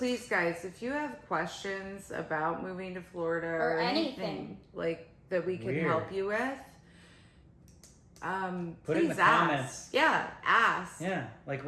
guys, if you have questions about moving to Florida or anything like that we can help you with, put it in the comments. Yeah, ask. Yeah, like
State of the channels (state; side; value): identical; both; correlation 1.00